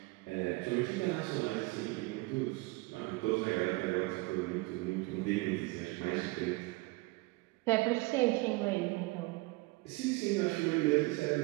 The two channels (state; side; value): quieter; left; 23.7 dB